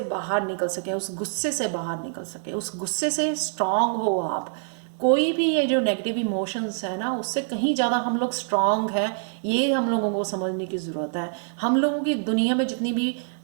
बाहर निकल सकें, उस गुस्से से बाहर निकल सकें, उस गुस्से से स्ट्रांग हो आप। कोई भी ये जो नेगेटिव इमोशंस है ना उससे कहीं ज़्यादा हम लोग स्ट्रांग हैं, ये हम लोगों को समझने की ज़रूरत है। हम लोगों की दुनिया में जितनी भी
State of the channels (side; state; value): left; silent; digital silence